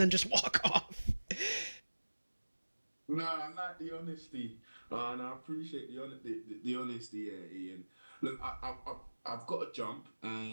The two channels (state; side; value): inverted; both; correlation -1.00